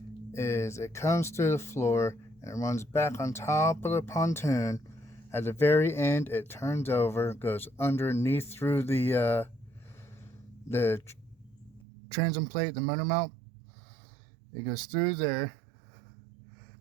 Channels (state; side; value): drops out; left; at 11.9 s